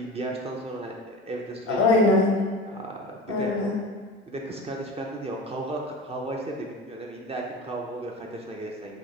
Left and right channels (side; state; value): both; normal; correlation 0.33